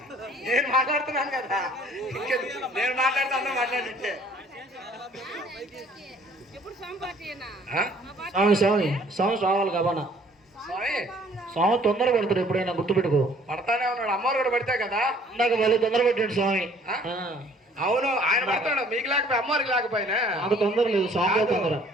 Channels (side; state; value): both; normal; correlation 0.57